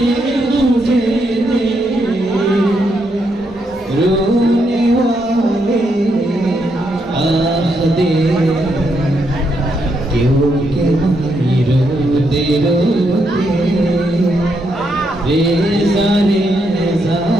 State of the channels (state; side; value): normal; both; correlation 0.78